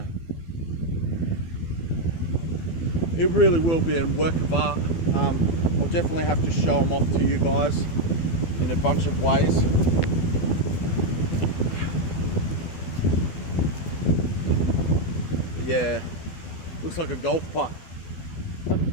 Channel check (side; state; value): right; late; 12 ms